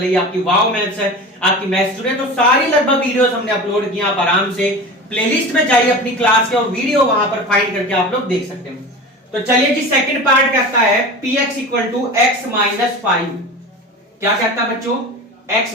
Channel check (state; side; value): normal; both; correlation 0.32